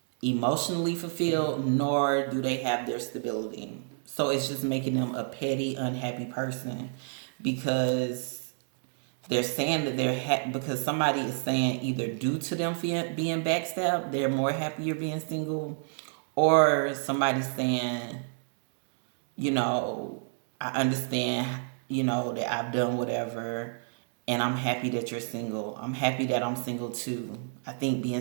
emotionally fulfilled, nor do they have their stability. So it's just making them a petty, unhappy person, because they're saying that they're because somebody is saying either due to them being backstabbed, they're more happier being single, or somebody's saying, you know, I understand, you know, that I've done whatever, and I'm happy that you're single. I'm happy that I'm single too. I think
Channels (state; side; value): silent; left; digital silence